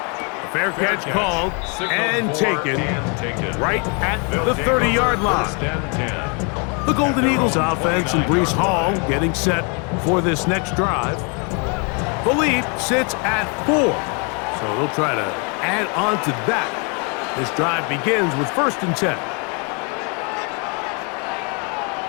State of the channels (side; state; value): right; quieter; 35.0 dB